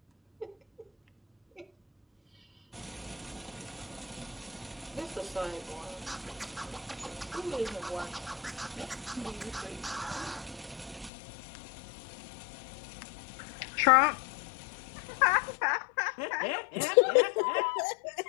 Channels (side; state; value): right; drops out; at 11.1 s